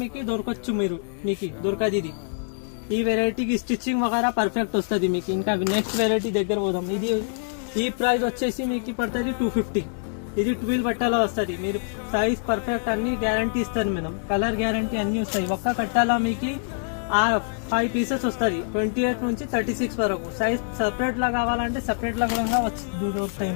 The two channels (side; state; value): right; silent; digital silence